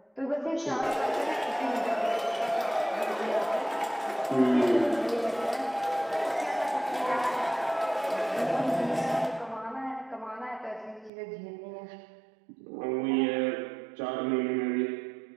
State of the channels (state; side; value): drops out; left; at 11.1 s